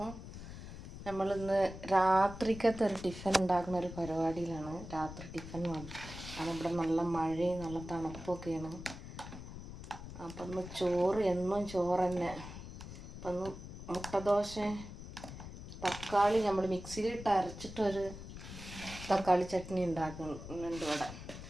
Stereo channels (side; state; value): left; noise; rumble, 11 dB below the sound